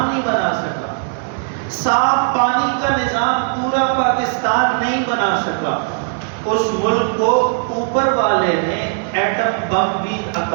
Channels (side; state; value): left; silent; 67 dB below the other